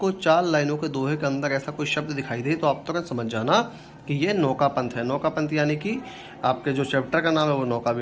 4 लाइनों के दोहे के अंदर ऐसा कोई शब्द दिखाई दे तो आप तुरंत समझ जाना कि ये नौका पंथ है। नौका पंथ यानी कि आपके जो चैप्टर का नाम है वो नौका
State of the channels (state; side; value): identical; both; correlation 1.00